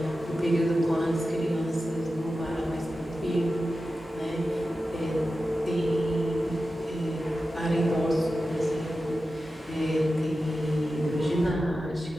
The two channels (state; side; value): normal; both; correlation 0.93